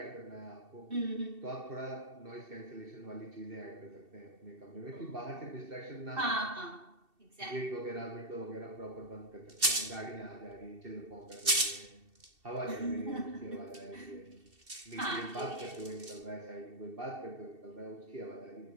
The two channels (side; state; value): left; late; 2.7 ms